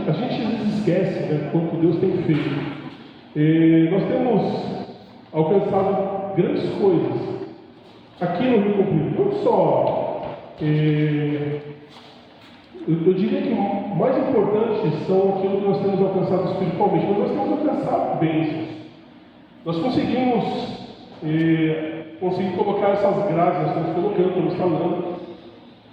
às vezes esquece, né, quanto Deus tem feito. Nós temos alcançado grandes coisas aqui no Rio Comprido, não só. Eu diria que o mais importante são aquilo que nós temos alcançado espiritualmente, mas nós temos alcançado bênçãos. Nós conseguimos colocar essas graças, estamos colocando, estamos falando.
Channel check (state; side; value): identical; both; correlation 1.00